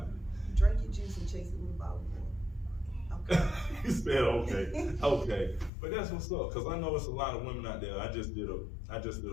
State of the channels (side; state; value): right; drops out; at 5.7 s